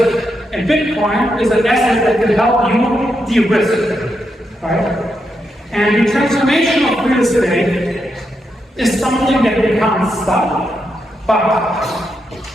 And Bitcoin is an asset that can help you de-risk, right? And the transformation of real estate is something that we can't stop, but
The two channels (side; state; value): both; normal; correlation 0.83